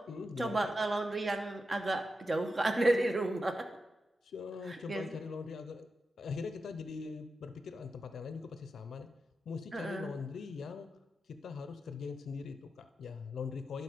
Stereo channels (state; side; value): normal; both; correlation 0.89